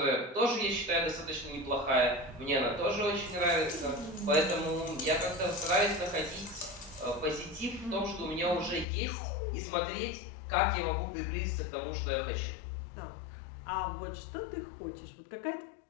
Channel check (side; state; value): right; drops out; at 8.8 s